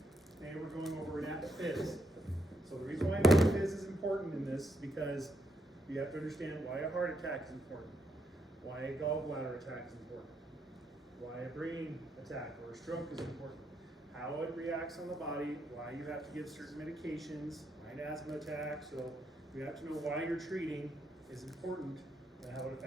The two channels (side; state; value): both; normal; correlation 0.78